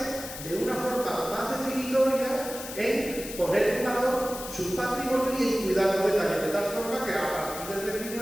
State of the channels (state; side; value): noise; left; hiss, 10 dB below the sound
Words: de una forma más definitoria en poner en valor su patrimonio y en cuidar los detalles, de tal forma que a partir del